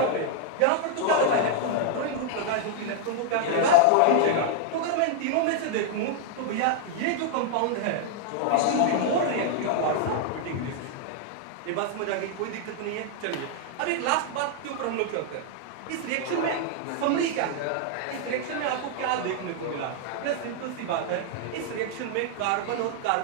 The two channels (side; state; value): both; different; correlation 0.00